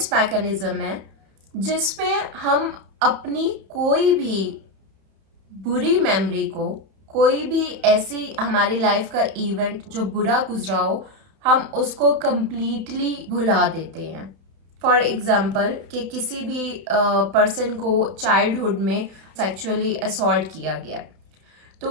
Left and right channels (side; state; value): left; late; 31 ms